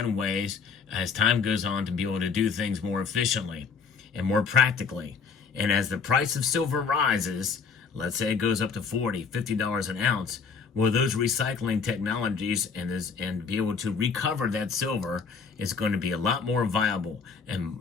ways as time goes on to be able to do things more efficiently and more practically. And as the price of silver rises, let's say it goes up to $40, $50 an ounce, well, those recycling technologies and be able to recover that silver is going to be a lot more viable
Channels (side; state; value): right; quieter; 5.6 dB